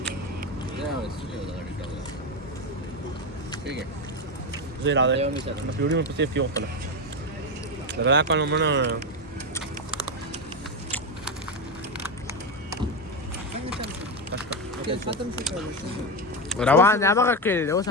زي العادة ما في يوم بس في يوم طلع لا كانوا منا روان يا ما كده هو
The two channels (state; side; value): normal; both; correlation 0.13